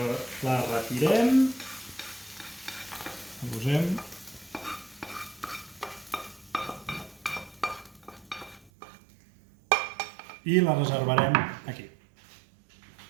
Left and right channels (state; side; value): drops out; left; at 8.7 s